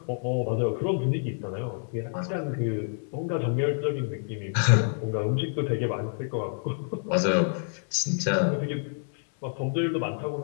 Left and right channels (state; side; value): silent; right; digital silence